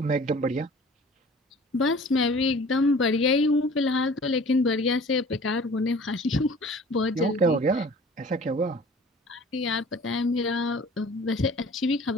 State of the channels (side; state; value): both; normal; correlation 0.47